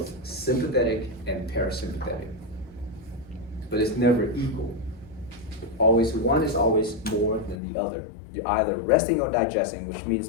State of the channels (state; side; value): drops out; right; at 7.6 s